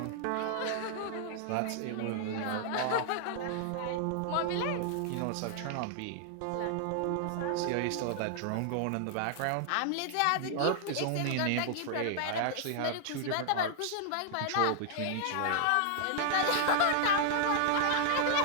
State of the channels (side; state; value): both; different; correlation 0.00